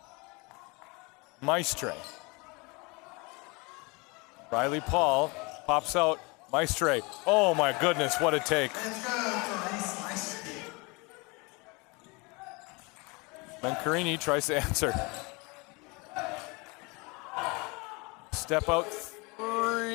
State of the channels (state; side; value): quieter; right; 27.8 dB